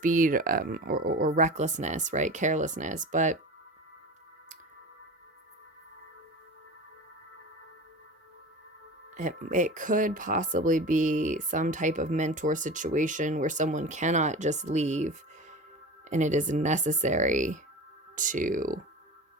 or recklessness, right? Carelessness. But it could possibly be some type of mentor situation where someone cannot just leave, and it is necessary to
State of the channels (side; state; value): both; normal; correlation 0.33